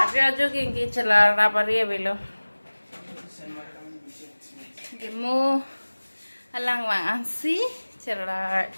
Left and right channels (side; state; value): both; inverted; correlation -1.00